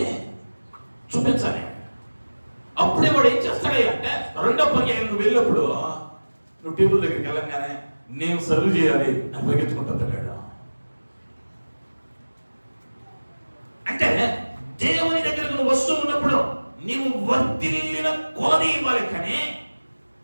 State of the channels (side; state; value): both; inverted; correlation -1.00